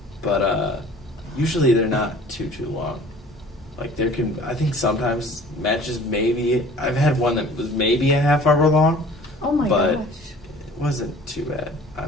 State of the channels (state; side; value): normal; both; correlation 0.48